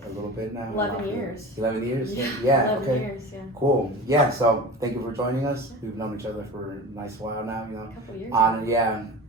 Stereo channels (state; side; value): normal; both; correlation 0.33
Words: a little bit now? 11 years. 11 years? Yeah, 11 okay. years, yeah. Cool. Yeah, so thank you for joining us. We've known each other for a nice while now, you know. A couple years.